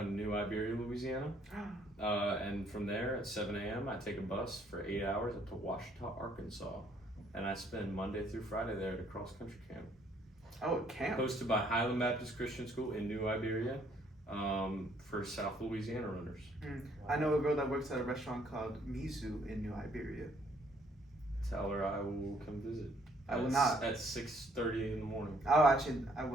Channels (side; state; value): both; normal; correlation 0.65